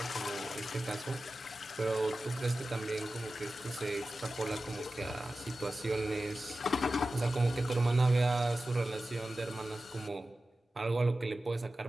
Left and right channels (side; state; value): both; normal; correlation 0.94